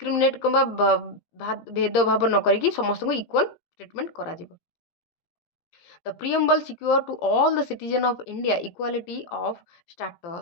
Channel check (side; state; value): right; late; 17 ms